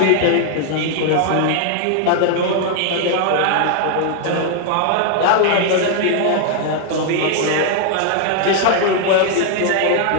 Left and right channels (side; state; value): both; different; correlation 0.00